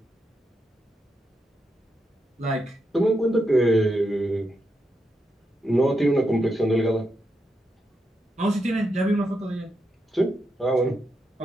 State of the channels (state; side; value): normal; both; correlation 0.84